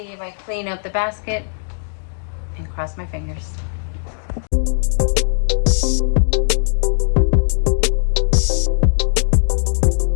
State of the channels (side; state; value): right; silent; digital silence